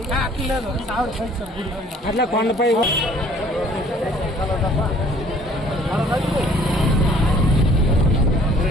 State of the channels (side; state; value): both; normal; correlation 0.56